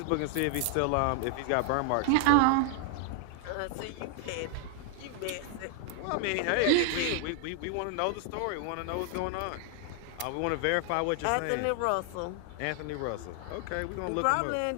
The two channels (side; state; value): both; different; correlation 0.00